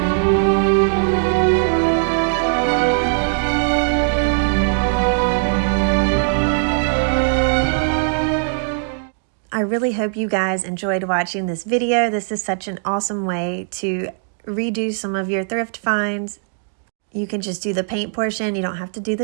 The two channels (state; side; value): silent; left; digital silence